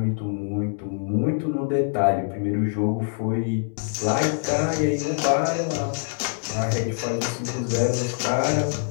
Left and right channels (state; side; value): silent; right; 62 dB below the other